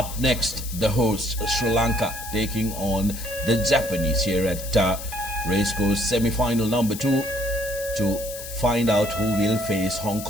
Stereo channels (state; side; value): noise; left; hiss, 11 dB below the sound